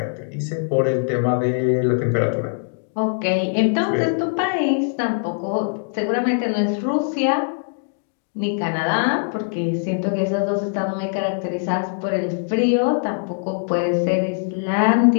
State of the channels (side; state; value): right; silent; digital silence